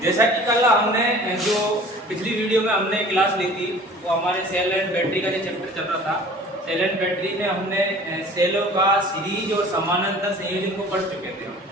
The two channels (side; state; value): both; normal; correlation 0.46